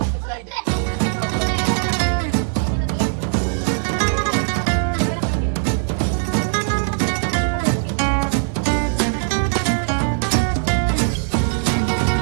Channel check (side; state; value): left; silent; digital silence